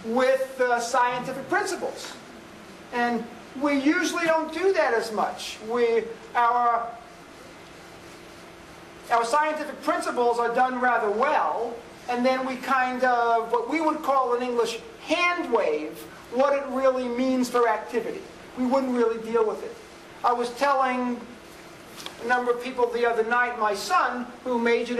with scientific principles. And we usually don't do that as much. Our scientific principles are done rather well, and then we kind of, what we would call in English, hand wave what it really means for activity. We wouldn't really deal with it. I was telling a number of people the other night, my son, who majored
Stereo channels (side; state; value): both; identical; correlation 1.00